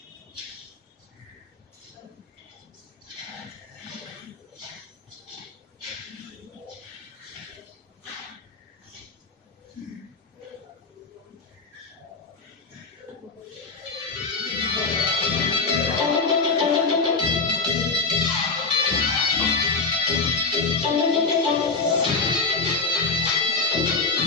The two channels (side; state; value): right; quieter; 4.1 dB